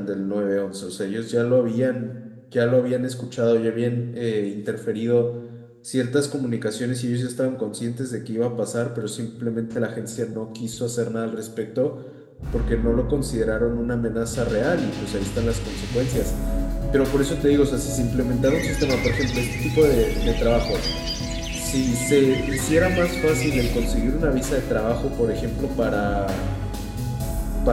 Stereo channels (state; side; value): identical; both; correlation 1.00